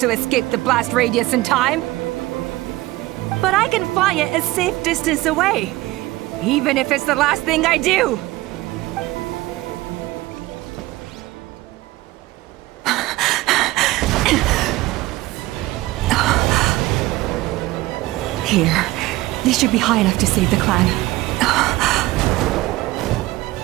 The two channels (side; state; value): left; quieter; 18.7 dB